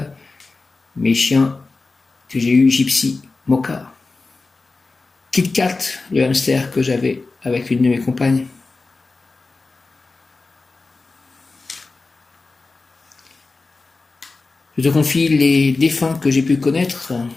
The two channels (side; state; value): right; quieter; 3.7 dB